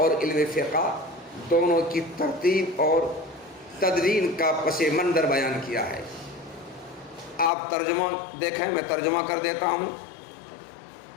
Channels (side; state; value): right; drops out; at 7.5 s